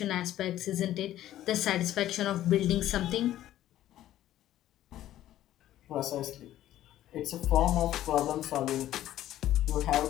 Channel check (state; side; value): quieter; right; 13.2 dB